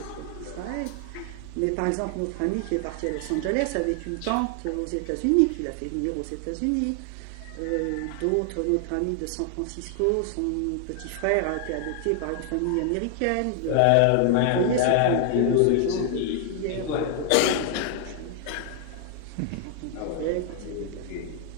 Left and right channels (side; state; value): both; different; correlation 0.00